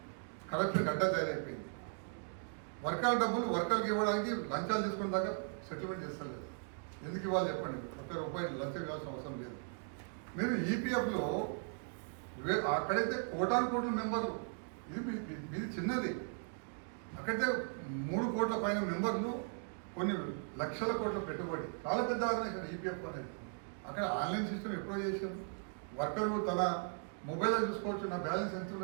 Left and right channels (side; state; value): left; silent; 52 dB below the other